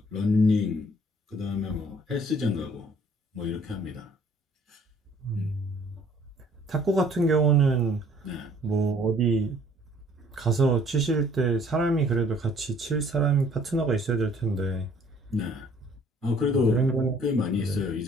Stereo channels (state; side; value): normal; both; correlation 0.58